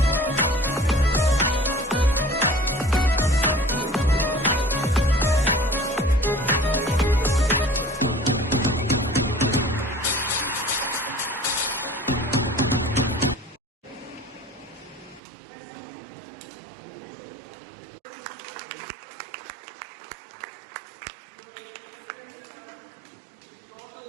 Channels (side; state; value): left; drops out; at 15.2 s